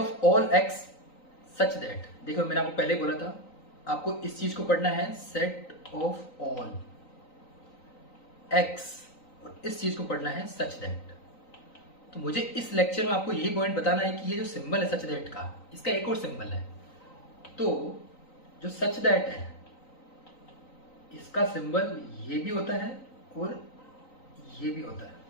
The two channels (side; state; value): right; late; 3.9 ms